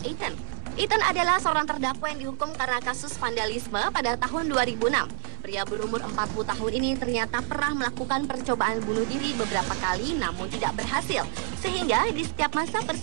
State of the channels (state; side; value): silent; left; digital silence